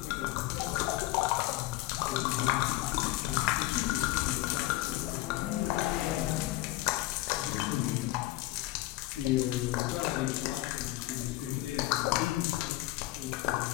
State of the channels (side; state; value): right; quieter; 17.6 dB